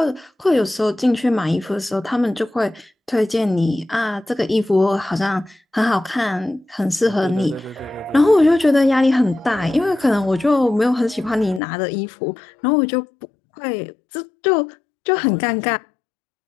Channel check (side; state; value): right; drops out; at 11.6 s